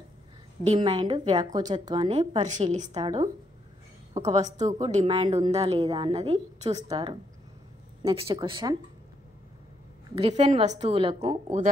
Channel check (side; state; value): both; normal; correlation 0.75